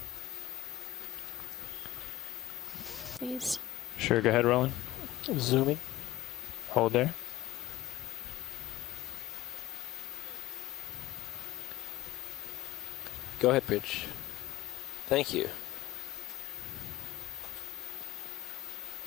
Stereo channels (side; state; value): right; quieter; 14.9 dB